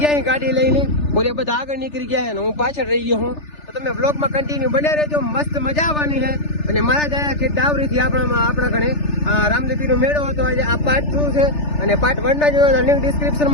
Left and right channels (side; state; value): right; late; 3.4 ms